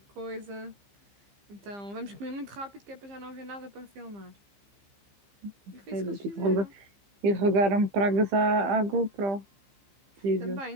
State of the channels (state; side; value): late; left; 15 ms